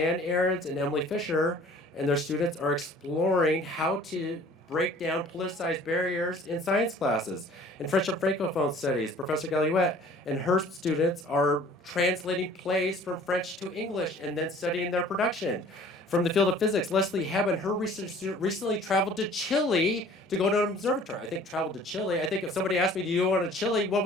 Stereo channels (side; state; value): both; normal; correlation 0.50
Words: Ahrens and Emily Fisher and their students are exploring how to break down politicized barriers in science classes. In French and Francophone studies, Professor Galluette and her students are translating plays from French to English and then studying their production. From the field of physics, Leslie Hebb and her research student recently traveled to Chile to go to an observatory. I think traveled to Chile. I think if somebody asked me, do you want to Chile, what